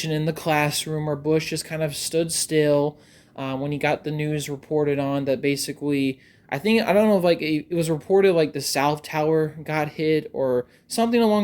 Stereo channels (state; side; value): identical; both; correlation 1.00